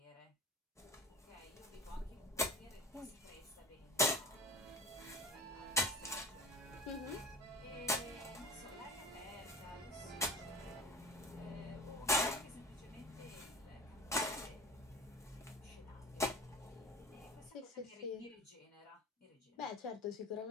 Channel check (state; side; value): normal; both; correlation 0.37